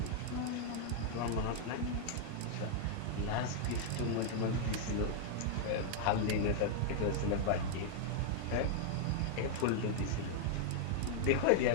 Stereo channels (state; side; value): different; both; correlation -0.01